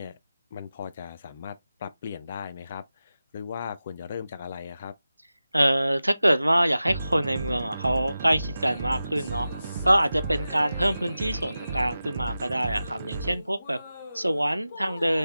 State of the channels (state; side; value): inverted; both; correlation -0.94